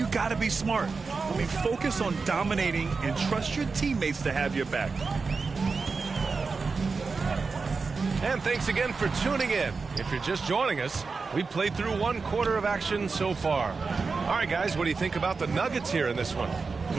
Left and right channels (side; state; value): left; quieter; 4.5 dB